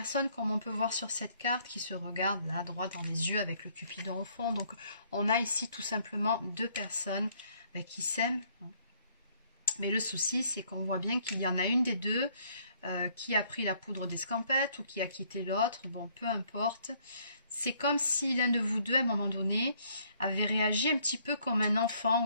comme on peut voir sur cette carte, qui se regardent là, droit dans les yeux avec le Cupidon au fond. Donc on a ici tout simplement deux personnes qui s'aiment. Mais le souci, c'est qu'on voit bien qu'il y en a une des deux qui a pris la poudre d'escampette ou qui a quitté l'autre. Bon, peu importe. C'est comme si l'un de vous deux, à un moment donné, avait réagi un petit peu comme un enfant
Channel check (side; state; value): both; inverted; correlation -0.64